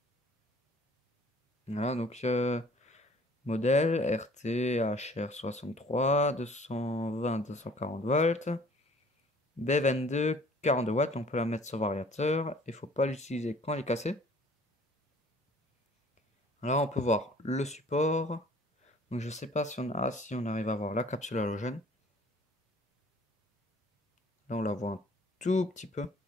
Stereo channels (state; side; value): normal; both; correlation 0.53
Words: Voilà, donc modèle RT HR63, 220-240 volts. B22, 42 watts, on peut la mettre sur variateur. Il ne faut pas l'utiliser quand elle est cassée. Là, on peut voir le support. Donc, je ne sais pas si on arrive à voir la capsule halogène. Là, on la voit un tout petit peu.